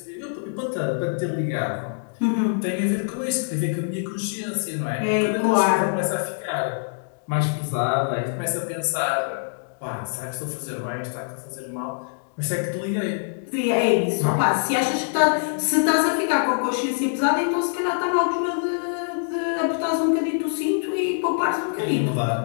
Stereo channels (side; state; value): right; silent; digital silence